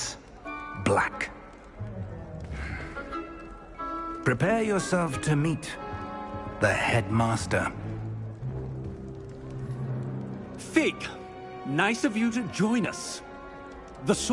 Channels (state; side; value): identical; both; correlation 1.00